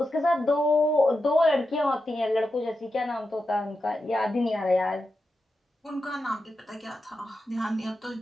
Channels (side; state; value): both; normal; correlation 0.89